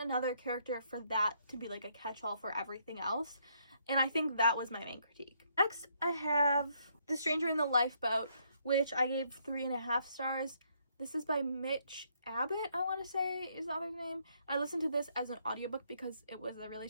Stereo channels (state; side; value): inverted; both; correlation -0.71